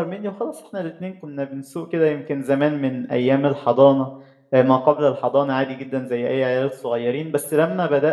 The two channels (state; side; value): identical; both; correlation 1.00